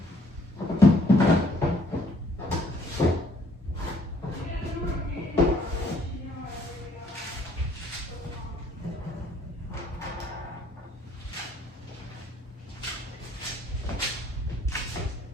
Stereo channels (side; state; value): both; normal; correlation 0.62